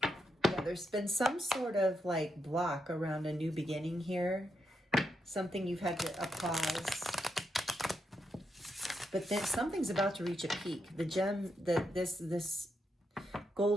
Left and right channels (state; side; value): normal; both; correlation 0.83